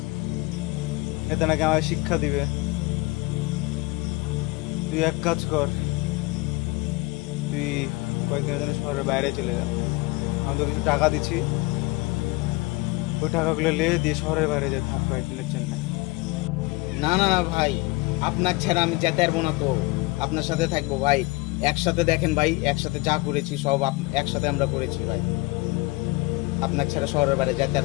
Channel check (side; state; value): right; quieter; 23.5 dB